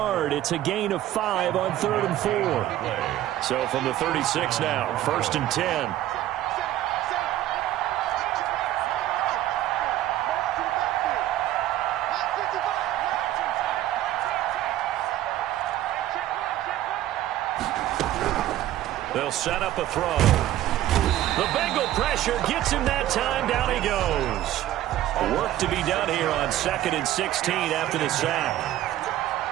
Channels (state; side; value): quieter; left; 13.6 dB